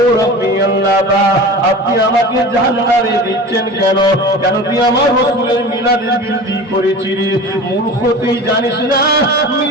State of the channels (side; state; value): both; normal; correlation 0.35